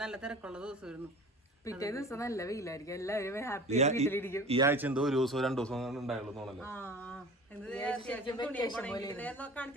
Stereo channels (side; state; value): both; normal; correlation 0.40